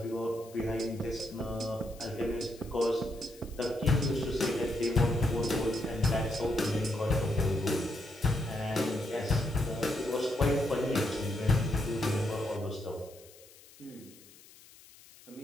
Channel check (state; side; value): noise; left; hiss, 23 dB below the sound